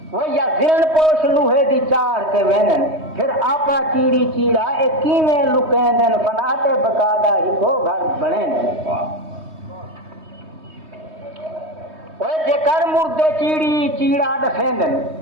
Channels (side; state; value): left; late; 3.2 ms